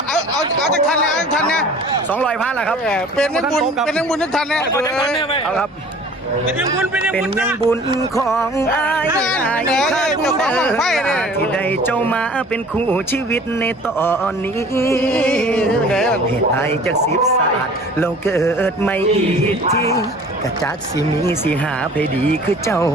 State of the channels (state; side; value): normal; both; correlation 0.47